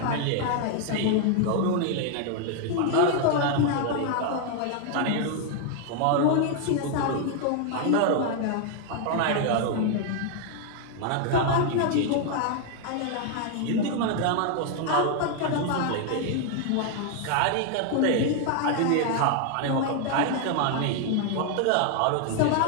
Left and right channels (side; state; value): both; different; correlation 0.00